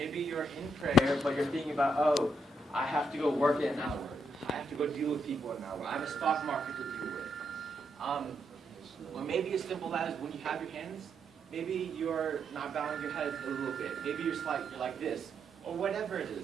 you're in prayer, but you're thinking about, oh, I have to go work in an hour. I have to go deal with people in an hour. I have a stock market to deal with. Or maybe as simple as when you have your hands, maybe you're not bowing your head a little bit. Maybe you're like this, or whatever it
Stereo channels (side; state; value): both; normal; correlation 0.78